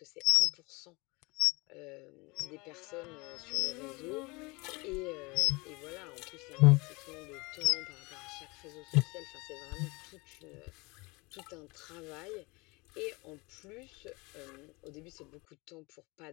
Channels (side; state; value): right; quieter; 25.6 dB